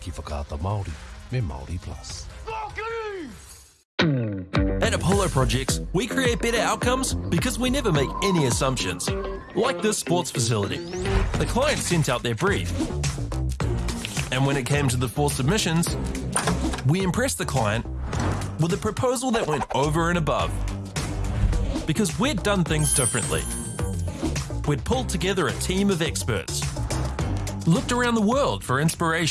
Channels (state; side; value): identical; both; correlation 1.00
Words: whakaata Māori me Māori Plus. At Apollo Projects, we create better outcomes because we never make any assumptions. Like this sports facility. The client sent out their brief. And when it came to the 4 submissions, we impressed the client with a proposal that went over and above. Because we'd done things differently. We'd pulled together a team of experts, looked around the world for